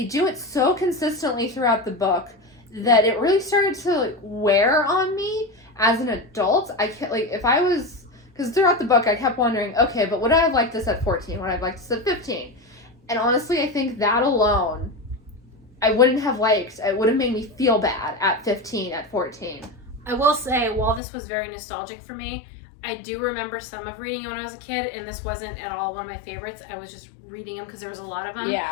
do it so consistently throughout the book that it really started to like wear on me as an adult. I can't, like, because throughout the book I kept wondering, okay, but would I have liked this at 14? Would I have liked this at 15? And honestly, I think that alone I wouldn't have liked. It would have made me feel bad at 15, at 14. I will say, while this was very nostalgic for me, I do remember some of reading when I was a kid, and this wasn't at all one of my favorites. I was just reading them because there was a lot of them.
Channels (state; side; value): drops out; right; at 21.0 s